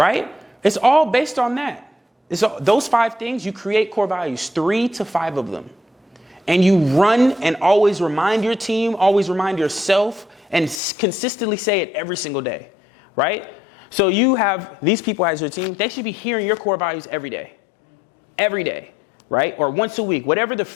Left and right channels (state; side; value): drops out; right; at 10.8 s